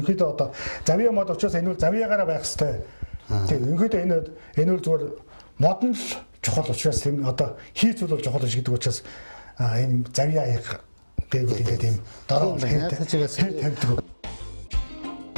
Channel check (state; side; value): inverted; both; correlation -1.00